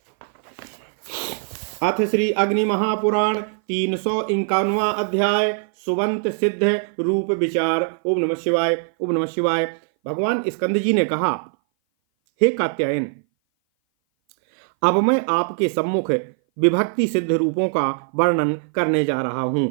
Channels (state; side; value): silent; left; 59 dB below the other